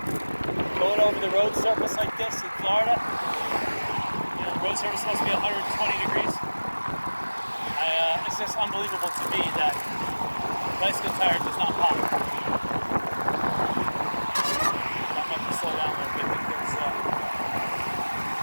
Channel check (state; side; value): inverted; both; correlation -1.00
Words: going over the road surface like this in Florida, the road surface is supposed to be 120 degrees. It's just unbelievable to me that bicycle tire does not pop. I might have to slow down a little bit because